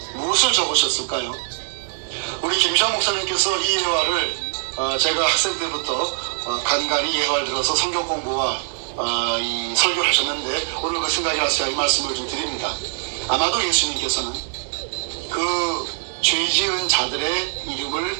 무엇을 적으셨을까요? 우리 김시환 목사님께서 이 예화를 제가 학생 때부터 간간히 예화를 들어서 성경 공부와 이 설교를 하셨는데, 오늘 그 생각이 나서 제가 이 말씀을 좀 드립니다. 아마도 예수님께서는 그 죄 지은 자들의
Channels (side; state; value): left; silent; digital silence